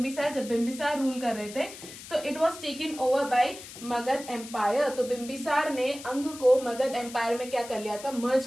जब बिंबिसार रूल कर रहे थे तो it was taken over by Magadha empire. तो बिंबिसार ने अंग को मगध एम्पायर में क्या कर लिया था? मर्ज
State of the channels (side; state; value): left; noise; hiss, 14 dB below the sound